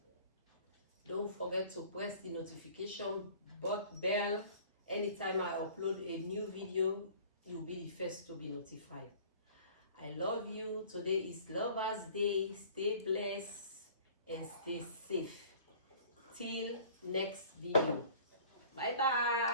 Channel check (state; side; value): inverted; both; correlation -0.48